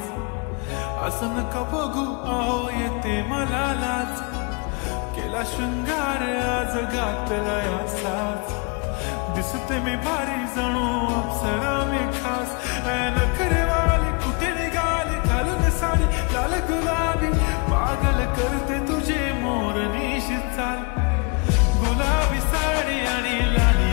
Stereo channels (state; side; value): quieter; right; 32.1 dB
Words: असं नका बघू अहो येते मला लाज. केला शृंगार आज घातला या साज, दिसते मी भारी जणू अप्सरा मी खास. नखरेवाली कुठे निघाली घालून साडी लाल गुलाबी, पागल करते तुझे मोरनीशी चाल. गुलाबी साडी आणि